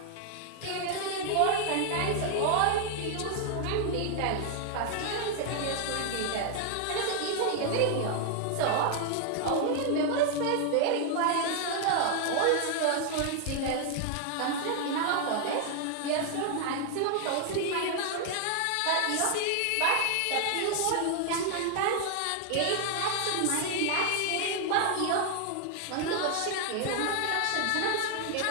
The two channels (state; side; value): different; both; correlation 0.00